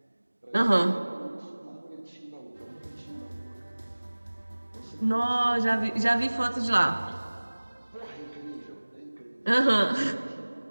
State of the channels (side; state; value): both; inverted; correlation -1.00